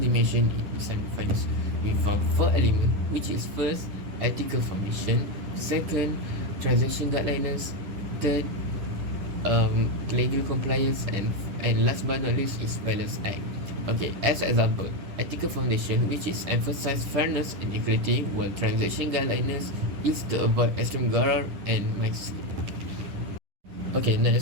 in Islamic finance. We found 4 elements, which is first, ethical foundation, second, transaction guidelines, third, legal compliance, and last but not least is balance act. Okay, as example, ethical foundation, which is emphasize fairness and equity, while transaction guidelines is to avoid extreme gharar and mix. Okay,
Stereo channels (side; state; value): left; late; 10 ms